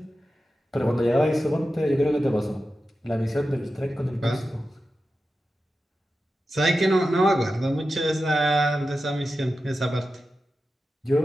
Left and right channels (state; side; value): normal; both; correlation 0.92